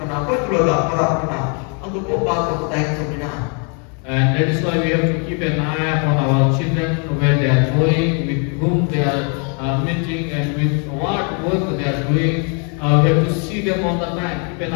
okoi tulu da para kana. Angko ko ba ko taik to mina. And that is why we have to keep an eye upon our children, where they are going, with whom they are meeting, and with what work they are doing. We have to see them all the time, keep an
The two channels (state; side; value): quieter; right; 38.2 dB